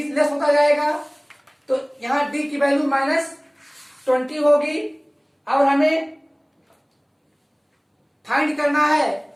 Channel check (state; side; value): identical; both; correlation 1.00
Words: लेस होता जाएगा। तो यहां डी की वैल्यू -20 होगी, और हमें फाइंड करना है